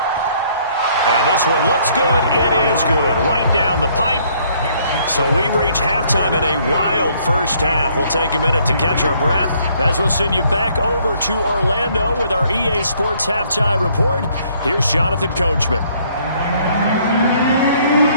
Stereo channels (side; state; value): both; inverted; correlation -0.64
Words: And this one looks good. It is good. Right down the pipe. So we've reached halftime in a wild first half. We'll take a minute to catch our breath as we'll send you back over to Orlando with our EA Sports Halftime Report. Here's Jonathan Coachman.